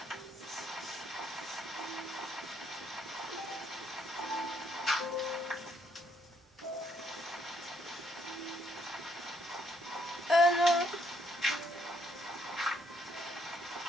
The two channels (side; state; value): both; normal; correlation 0.71